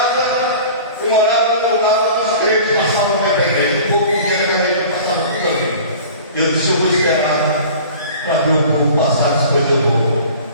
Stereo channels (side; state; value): both; inverted; correlation -0.43